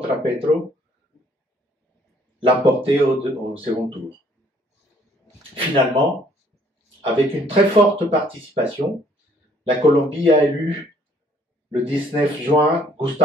Petro l'emporter au second tour. Finalement, avec une très forte participation, la Colombie a élu le 19 juin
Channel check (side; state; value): both; normal; correlation 0.62